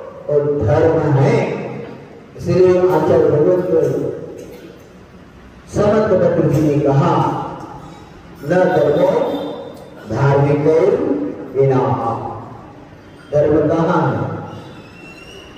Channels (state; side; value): identical; both; correlation 1.00